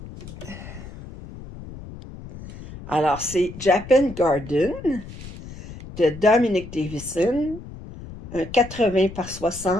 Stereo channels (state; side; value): noise; left; rumble, 14 dB below the sound